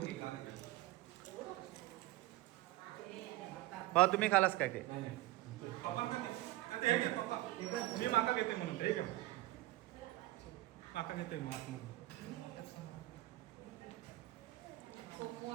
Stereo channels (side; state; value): left; quieter; 18.0 dB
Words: भाऊ तुम्ही खालास काय ते मी माका घेते म्हणून हे घ्या. माका घेते मग आतमध्ये